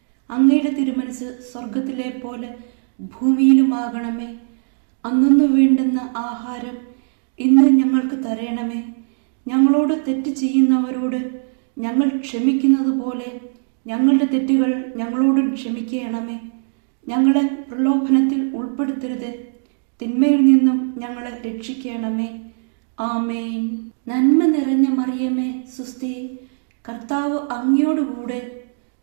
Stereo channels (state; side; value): silent; left; 64 dB below the other